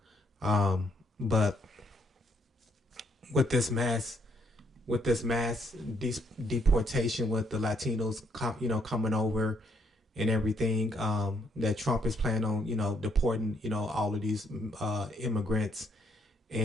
But with this mass deportation, with the Latinos, coming over and everything, that Trump is planning on, deporting, all of these immigrants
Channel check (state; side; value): normal; both; correlation 0.72